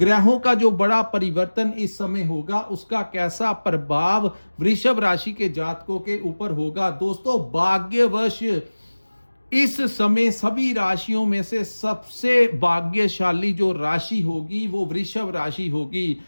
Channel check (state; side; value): inverted; both; correlation -1.00